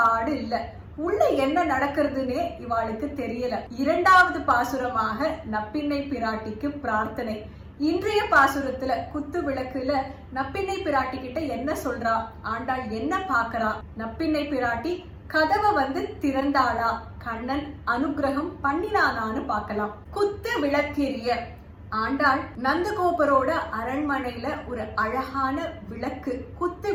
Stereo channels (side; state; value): both; identical; correlation 1.00